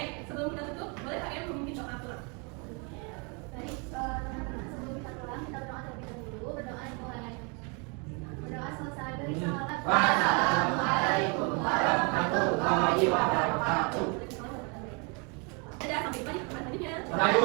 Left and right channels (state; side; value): quieter; left; 33.3 dB